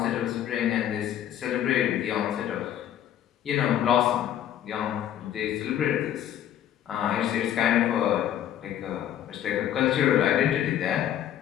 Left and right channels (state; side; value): quieter; right; 10.9 dB